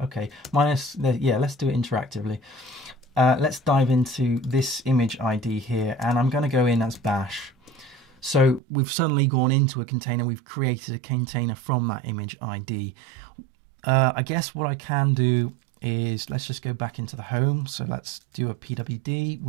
okay, yeah, let's do it interactively. Let's dive into this image ID here, and I'm going to go in as bash. So we've suddenly gone into a container, we've created a container from that image ID. I guess what I can do is, let's just go back into the home. So let's do a pwd.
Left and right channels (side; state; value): left; drops out; at 8.6 s